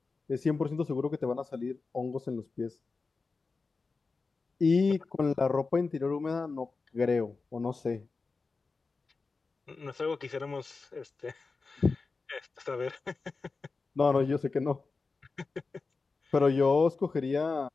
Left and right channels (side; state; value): right; quieter; 4.2 dB